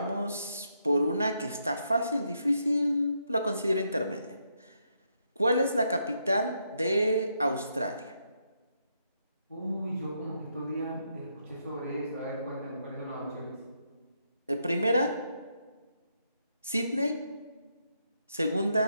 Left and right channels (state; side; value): inverted; both; correlation -0.78